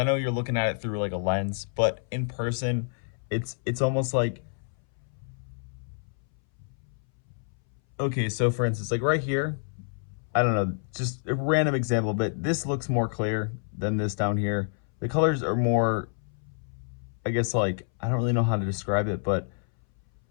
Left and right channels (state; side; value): silent; right; 59 dB below the other